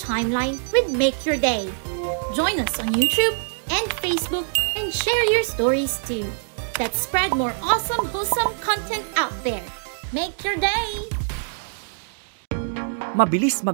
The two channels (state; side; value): silent; left; digital silence